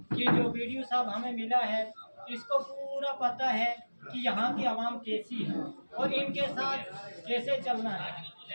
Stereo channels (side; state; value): both; inverted; correlation -1.00